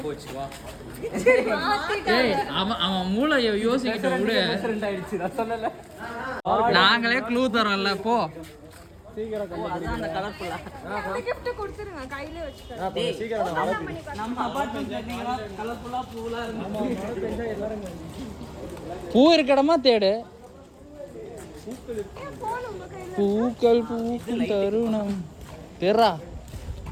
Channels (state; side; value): identical; both; correlation 1.00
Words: போச்சு வா. ஏய் அவன் மூளை யோசிக்கிட்ட விடு. டிஃபரண்ட் ஆயிடுச்சு நான் சொன்னல. நாங்களே க்ளூ தரோம்ல போ. சீக்கிரம் அதான் அந்த கலர்ஃபுல்லா. gift கொடுத்துருங்க கையிலே வச்சுக்கோங்க. சீக்கிரம் நம்ம அபார்ட்மெண்ட்ல நீங்க கலர்ஃபுல்லா பூலா இருக்கு. பூ இருக்க இடமா தேடு. பூக்கள் பூக்கும் தருணம் தெரா.